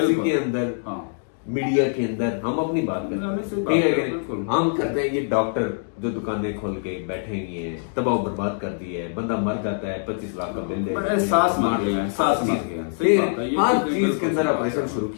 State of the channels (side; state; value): right; silent; digital silence